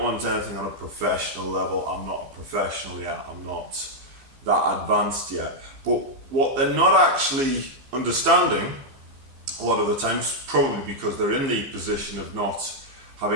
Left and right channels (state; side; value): late; left; 15 ms